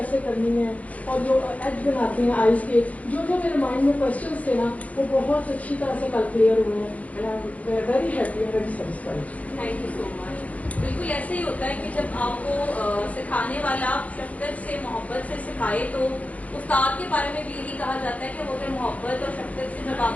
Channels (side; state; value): right; late; 0.068 ms